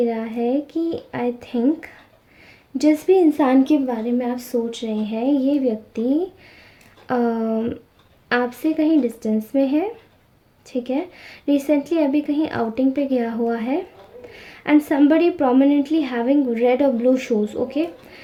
रहा है कि आई थिंक जिस भी इंसान के बारे में आप सोच रहे हैं, ये व्यक्ति आपसे कहीं डिस्टेंस में है। ठीक है, रिसेंटली अभी कहीं आउटिंग पे गया हुआ है। And somebody prominently having red और ब्लू शूज़। ओके,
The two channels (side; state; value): both; identical; correlation 1.00